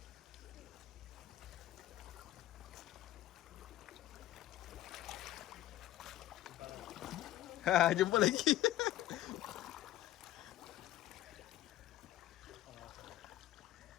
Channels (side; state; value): right; quieter; 13.9 dB